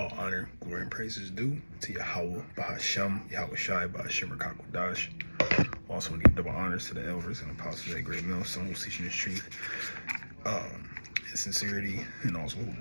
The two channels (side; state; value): both; inverted; correlation -1.00